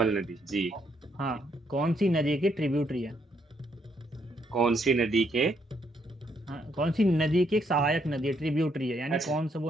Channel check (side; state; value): both; normal; correlation 0.73